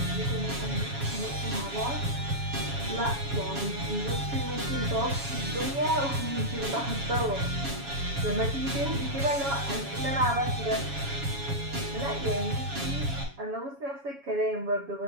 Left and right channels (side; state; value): left; late; 7.2 ms